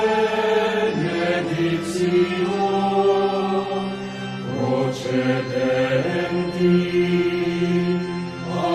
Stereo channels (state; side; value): identical; both; correlation 1.00